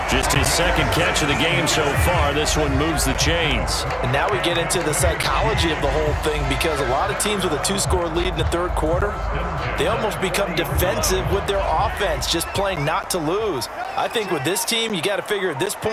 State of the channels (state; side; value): identical; both; correlation 1.00